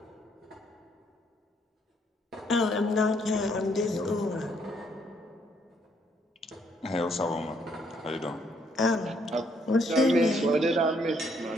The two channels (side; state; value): both; normal; correlation 0.69